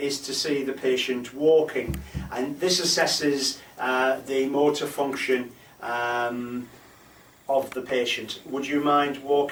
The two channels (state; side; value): identical; both; correlation 1.00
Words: to see the patient walking, and this assesses the motor function of the patient. Would you mind